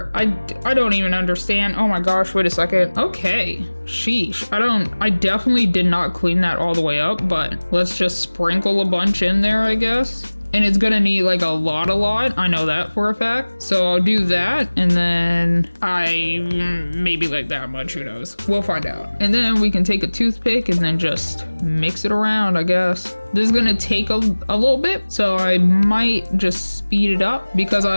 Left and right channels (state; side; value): inverted; both; correlation -1.00